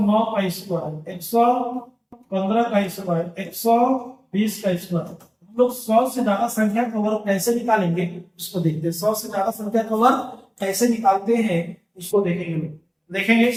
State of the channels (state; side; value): identical; both; correlation 1.00